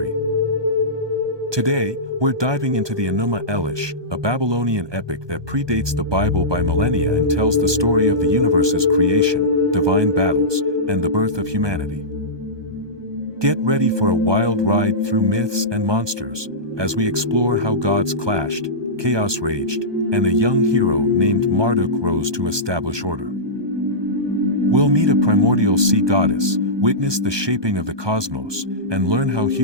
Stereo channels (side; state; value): left; late; 1.2 ms